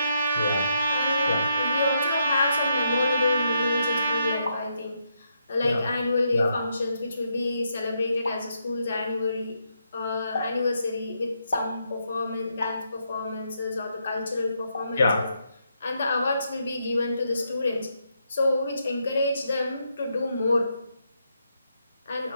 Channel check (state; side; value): inverted; both; correlation -0.79